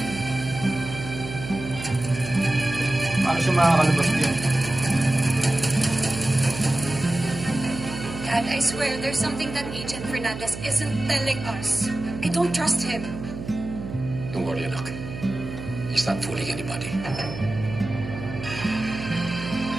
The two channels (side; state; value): right; noise; hum, 9 dB below the sound